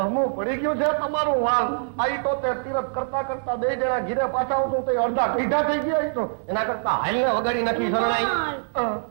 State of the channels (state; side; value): silent; left; 59 dB below the other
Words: પડી ગયું છે તમારું વાલ. આઈ તો તે તીરથ કરતા કરતા બે જણા ઘીરે પાછા આવતું તો અડધા કઈઢા થઈ ગયા તો એના કરતા હાલને વગાડી નાખી શરણાઈ.